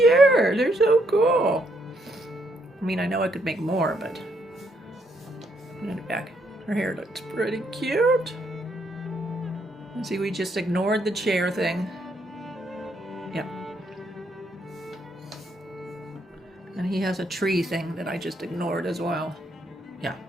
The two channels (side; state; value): both; normal; correlation 0.74